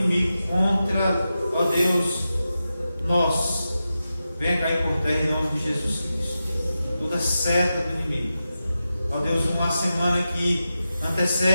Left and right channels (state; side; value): inverted; both; correlation -0.91